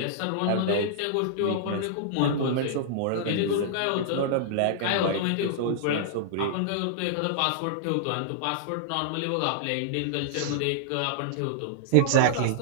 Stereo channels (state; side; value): different; both; correlation -0.01